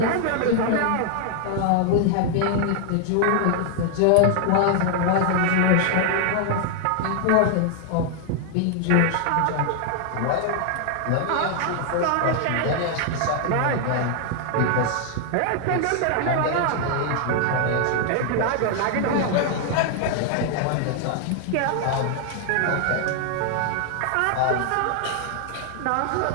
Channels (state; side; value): different; both; correlation 0.00